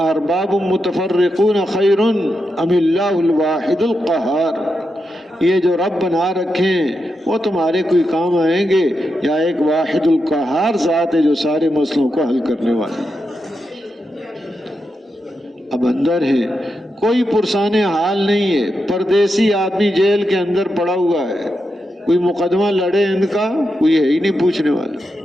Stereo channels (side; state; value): both; normal; correlation 0.86